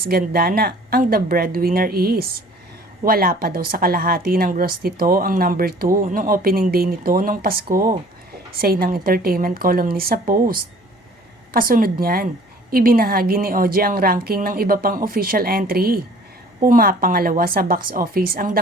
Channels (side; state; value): both; normal; correlation 0.52